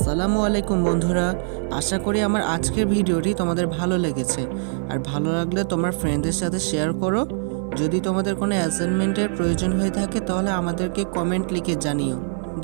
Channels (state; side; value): silent; left; 64 dB below the other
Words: বন্ধুরা, আশা করি আমার আজকের ভিডিওটি তোমাদের ভালো লেগেছে। আর ভালো লাগলে তোমার ফ্রেন্ডদের সাথে শেয়ার করো। যদি তোমাদের কোনো অ্যাসাইনমেন্টের প্রয়োজন হয়ে থাকে তাহলে আমাদেরকে কমেন্ট লিখে জানিও।